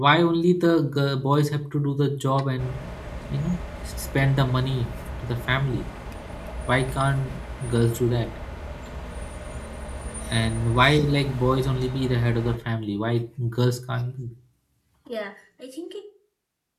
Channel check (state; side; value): identical; both; correlation 1.00